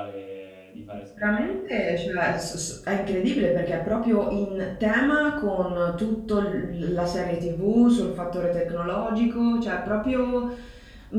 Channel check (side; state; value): both; identical; correlation 1.00